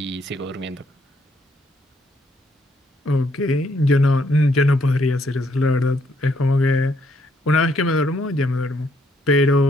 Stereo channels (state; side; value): normal; both; correlation 0.71